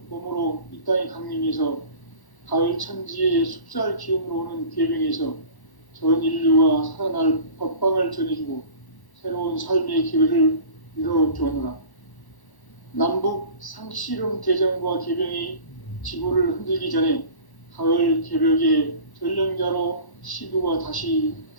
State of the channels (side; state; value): right; late; 1.1 ms